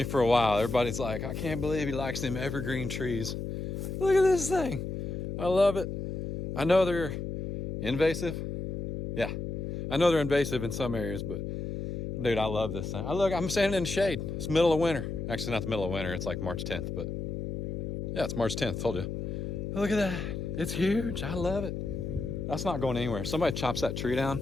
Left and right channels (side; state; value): left; noise; hum, 4 dB below the sound